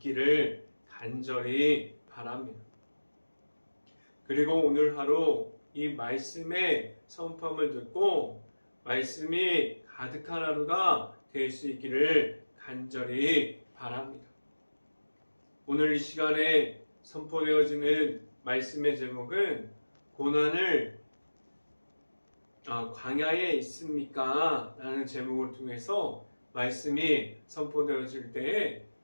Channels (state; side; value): inverted; both; correlation -1.00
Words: 간절히 바랍니다. 그리고 오늘 하루 이 말씀의 선포함을 듣고 말씀이 가득한 하루가 될 수 있기를 간절히 바랍니다. 오늘 이 시간에 선포되어지는 말씀의 제목은 고난을 광야에 있습니까? 라는 제목을 통해서 말씀이 선포되어질 때에